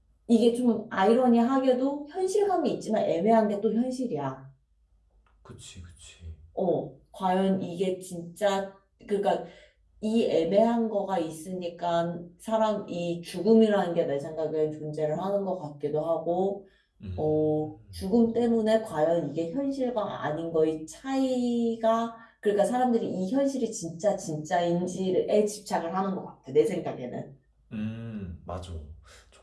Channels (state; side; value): identical; both; correlation 1.00